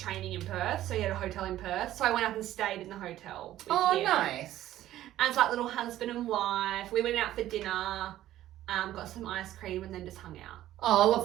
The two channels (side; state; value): left; quieter; 13.6 dB